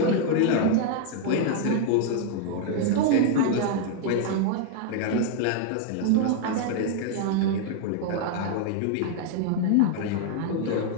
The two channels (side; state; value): both; different; correlation 0.00